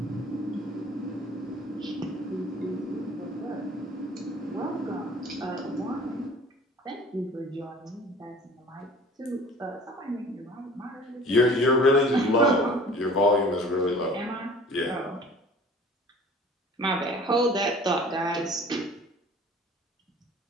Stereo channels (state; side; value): normal; both; correlation 0.47